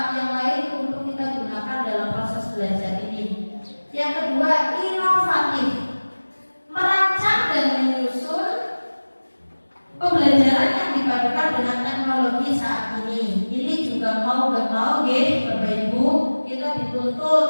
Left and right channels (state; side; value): inverted; both; correlation -1.00